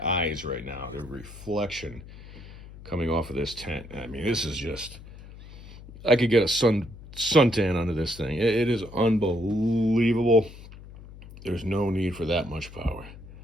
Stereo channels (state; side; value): noise; left; hum, 17 dB below the sound